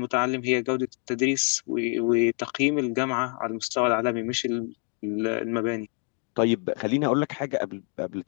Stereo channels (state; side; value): quieter; right; 39.8 dB